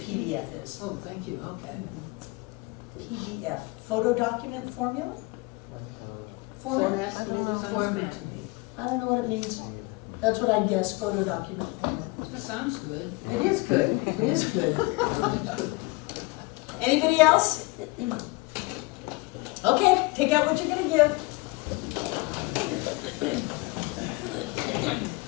is. Oh, thank you, okay. PDF, photo document formula? Format, I maybe don't know, something? format. I don't know what it means. That's what I guess, photo document format. That sounds good. It is good, it is good. Anybody else? Okay, take out what you're gonna give.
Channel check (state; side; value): quieter; right; 24.5 dB